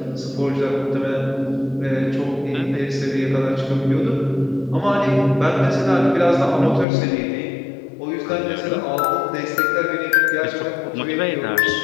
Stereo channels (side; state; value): right; drops out; at 6.9 s